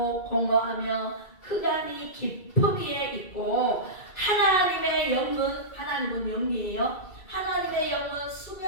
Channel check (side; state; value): right; late; 2.3 ms